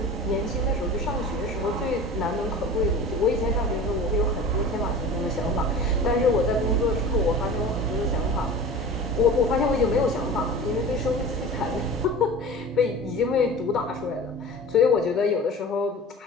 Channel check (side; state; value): both; normal; correlation 0.36